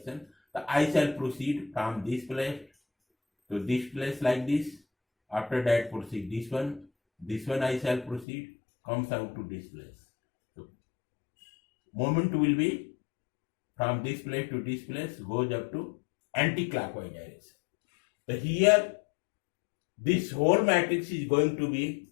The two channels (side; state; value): right; drops out; at 8.2 s